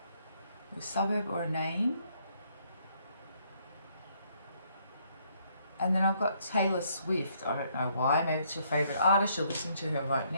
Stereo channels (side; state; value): both; inverted; correlation -0.69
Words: A suburb or a name. And then I've got Taylor Swift. I don't know why. Maybe it's your favourite artist. You're listening to her right